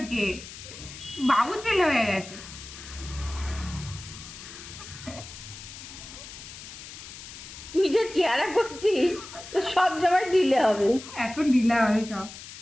বাবু ছেলে হয়ে গেছে। তুই যে চেহারা করছিস তো সব সময় ঢিলে হবে। এখন ঢিলা হবে সব।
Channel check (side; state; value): left; noise; hiss, 14 dB below the sound